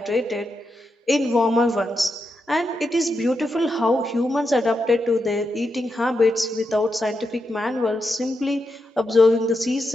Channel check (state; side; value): normal; both; correlation 0.85